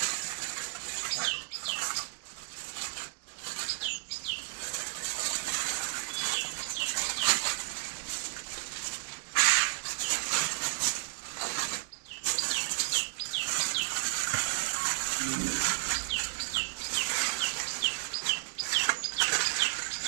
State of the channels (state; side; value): silent; left; 56 dB below the other